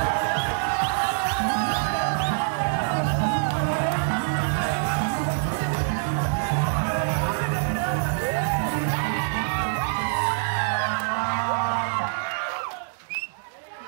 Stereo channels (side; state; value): left; silent; digital silence